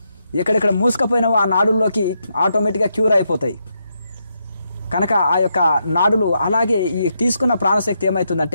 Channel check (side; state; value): both; inverted; correlation -0.81